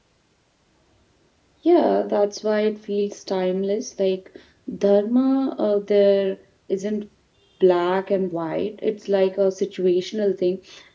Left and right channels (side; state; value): both; identical; correlation 1.00